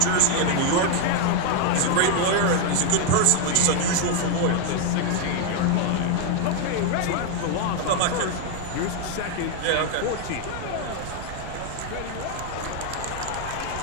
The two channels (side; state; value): both; different; correlation 0.01